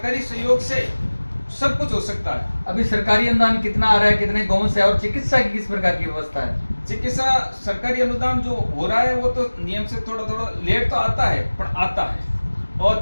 सहयोग से सब कुछ हो सकता है। अभी सरकारी अनुदान कितना आ रहा है, कितने गाँव से, और चिकित्सा की किस प्रकार की व्यवस्था है? चिकित्सा सरकारी अनुदान जो हो रहा है वो तो नियम से थोड़ा थोड़ा लेट तो आता है, पर आता है। और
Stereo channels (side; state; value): both; inverted; correlation -1.00